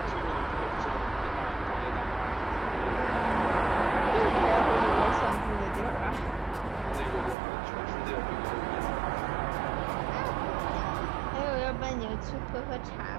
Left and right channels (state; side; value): drops out; left; at 7.4 s